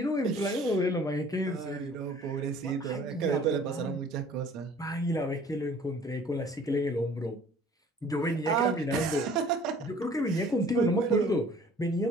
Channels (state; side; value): normal; both; correlation 0.52